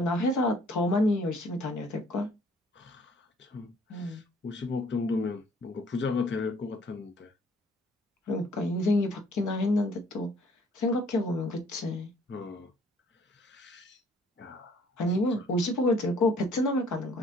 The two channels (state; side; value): normal; both; correlation 0.60